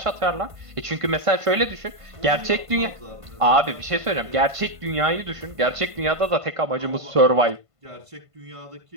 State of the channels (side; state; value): left; late; 1.5 ms